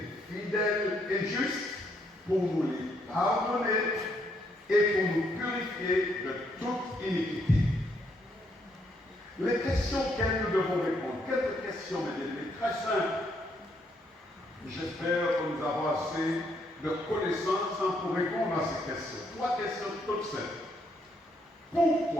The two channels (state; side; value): normal; both; correlation 0.73